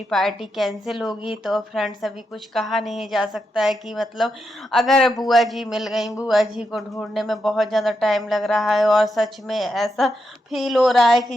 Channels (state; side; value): normal; both; correlation 0.84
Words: पार्टी कैंसिल होगी? तो फ्रेंड्स, अभी कुछ कहा नहीं जा सकता है कि मतलब अगर बुआ जी मिल गई, बुआ जी को ढूंढने में बहुत ज़्यादा टाइम लग रहा है। और सच में ऐसा फील हो रहा है